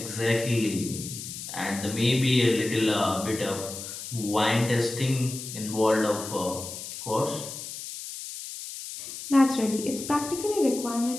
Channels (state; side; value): noise; left; hiss, 9 dB below the sound